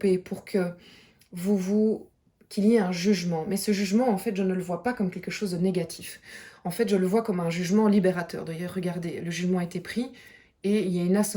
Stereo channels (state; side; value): identical; both; correlation 1.00